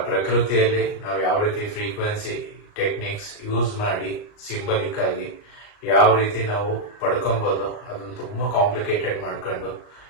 ಪ್ರಕೃತಿಯಲ್ಲಿ ನಾವು ಯಾವ ರೀತಿ ಫ್ರೀಕ್ವೆನ್ಸಿ ಟೆಕ್ನಿಕ್ಸ್ ಯೂಸ್ ಮಾಡಿ ಸಿಂಬಲಿಕ್ ಆಗಿ ಯಾವ ರೀತಿ ನಾವು ಪಡ್ಕೊಬಹುದು ಅದನ್ನು ತುಂಬಾ ಕಾಂಪ್ಲಿಕೇಟೆಡ್ ಮಾಡ್ಕೊಂಡು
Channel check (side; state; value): right; late; 38 ms